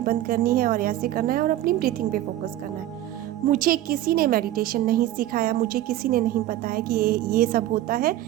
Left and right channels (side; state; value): left; quieter; 13.9 dB